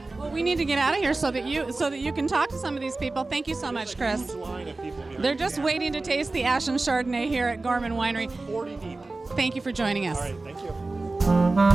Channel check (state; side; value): quieter; left; 3.3 dB